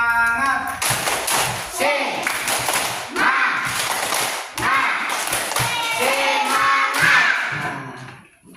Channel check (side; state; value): both; identical; correlation 1.00